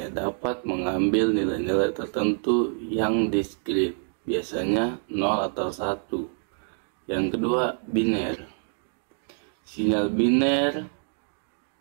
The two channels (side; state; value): left; silent; 61 dB below the other